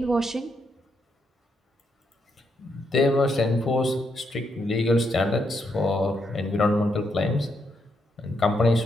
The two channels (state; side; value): normal; both; correlation 0.79